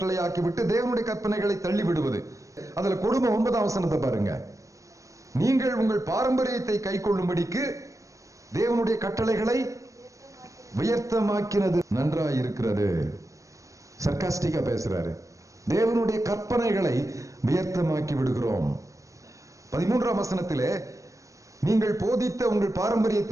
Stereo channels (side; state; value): left; late; 0.16 ms